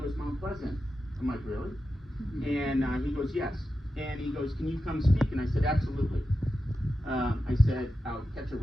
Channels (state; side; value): normal; both; correlation 0.91